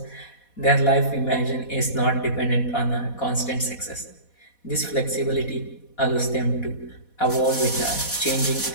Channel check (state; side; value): late; right; 4.1 ms